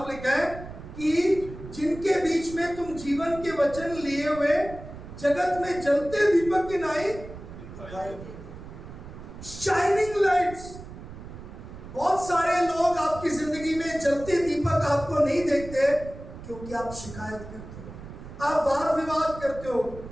लिखा है कि जिनके बीच में तुम जीवन के वचन लिए हुए जगत में जलते दीपक की नाई शाइनिंग लाइट्स। बहुत सारे लोग आपकी जिंदगी में जलते दीपक आपको नहीं देखते, क्योंकि आप शिकायत करते हो, आप वाद विवाद करते हो,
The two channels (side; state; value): right; noise; rumble, 13 dB below the sound